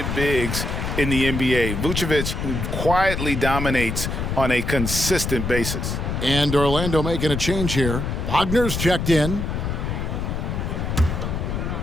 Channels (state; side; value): noise; left; rumble, 2 dB below the sound